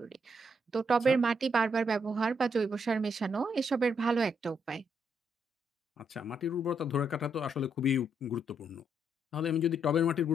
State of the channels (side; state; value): both; normal; correlation 0.75